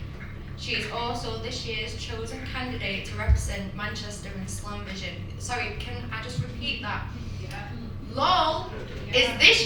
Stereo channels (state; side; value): identical; both; correlation 1.00